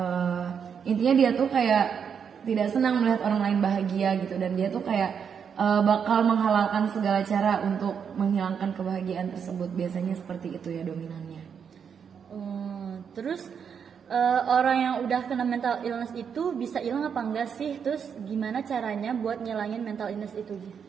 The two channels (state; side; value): quieter; left; 7.1 dB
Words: intinya dia tuh kayak tidak senang melihat orang lain bahagia gitu. Dan dia tuh kayak bakal menghalalkan segala cara untuk menghilangkan kebahagiaan tersebut. Biasanya seperti itu ya dominannya. Terus orang yang udah kena mental illness itu bisa hilang apa enggak sih? Terus gimana caranya buat ngilangin mental illness itu?